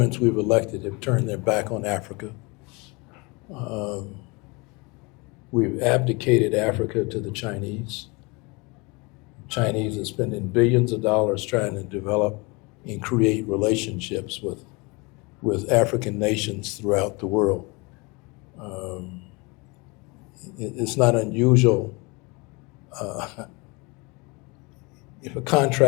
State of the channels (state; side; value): quieter; right; 27.5 dB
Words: we've elected have turned their back on Africa. We've abdicated Africa to the Chinese. The Chinese are spending billions of dollars trying to develop and create relationships with African nations throughout the world. It's not unusual if a